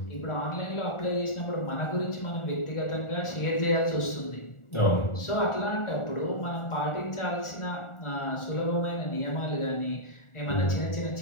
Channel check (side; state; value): right; late; 1.4 ms